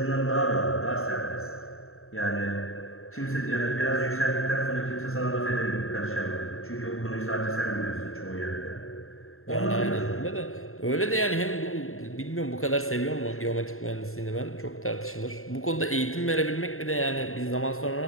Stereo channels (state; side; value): late; right; 0.62 ms